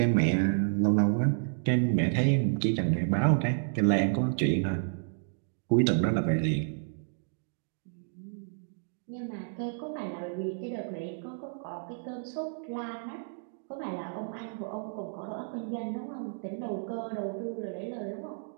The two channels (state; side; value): silent; left; digital silence